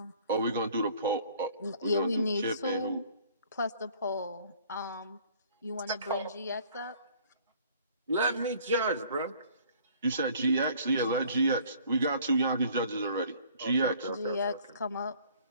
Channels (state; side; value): inverted; both; correlation -0.55